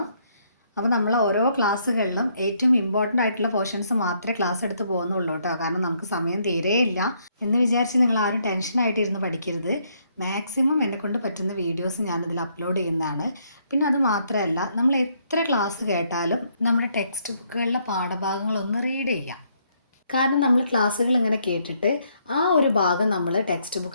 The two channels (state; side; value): inverted; both; correlation -0.72